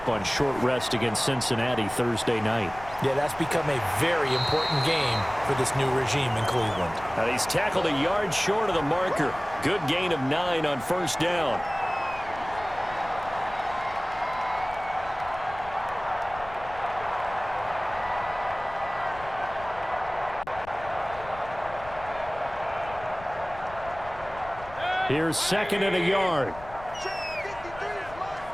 on short rest against Cincinnati Thursday night. Yeah, that's become a very important game for this new regime in Cleveland. Now, he's tackled a yard short of the marker. Good gain of 9 on first down. Here's 2nd and a yard.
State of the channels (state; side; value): noise; left; rumble, 17 dB below the sound